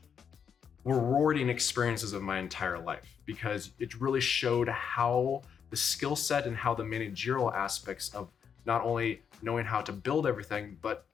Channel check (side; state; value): right; quieter; 7.3 dB